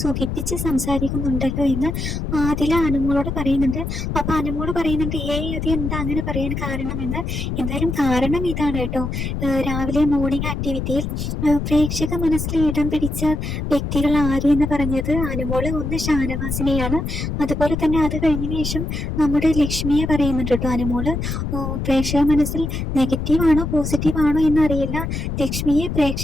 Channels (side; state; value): left; noise; rumble, 3 dB below the sound